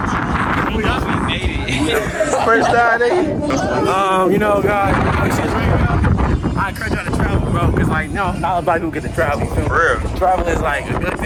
First time, nigga. You know, guys, I encourage y'all to travel, bro, because, like, no, not everybody who get to travel, you feel me? For real. Travel is, like, a good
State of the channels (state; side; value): identical; both; correlation 1.00